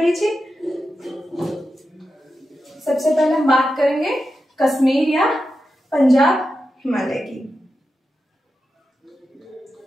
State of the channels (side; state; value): both; normal; correlation 0.90